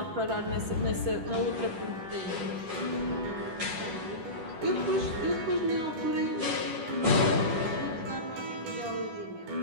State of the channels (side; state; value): left; late; 10 ms